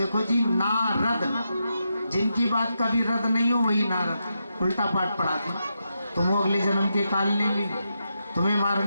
जी, नारद, जिनकी बात कभी रद्द नहीं हो वही नारद उल्टा पाठ पढ़ाते। तुम अगले जन्म के काल ने भी तुम्हें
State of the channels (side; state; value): both; inverted; correlation -0.85